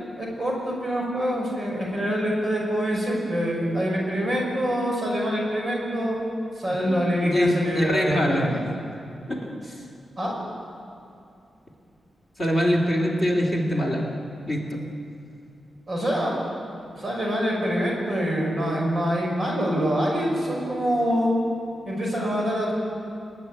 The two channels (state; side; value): normal; both; correlation 0.88